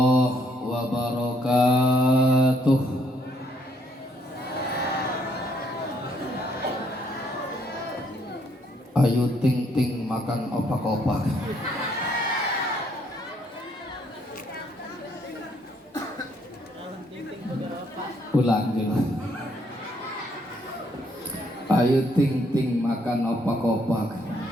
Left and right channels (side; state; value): both; normal; correlation 0.69